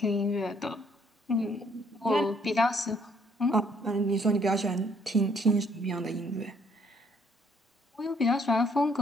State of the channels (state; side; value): normal; both; correlation 0.66